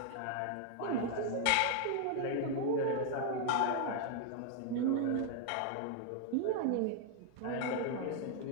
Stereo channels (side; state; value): both; different; correlation 0.00